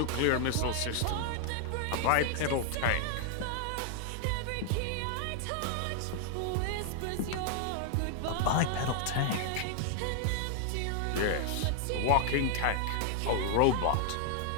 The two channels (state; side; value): different; both; correlation 0.00